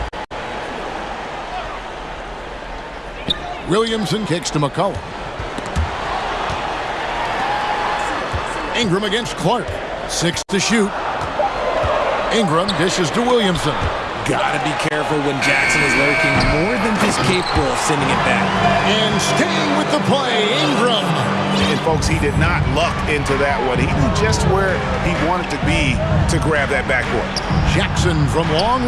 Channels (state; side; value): identical; both; correlation 1.00